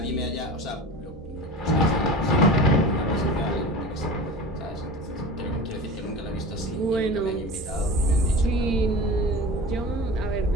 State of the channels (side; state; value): both; normal; correlation 0.34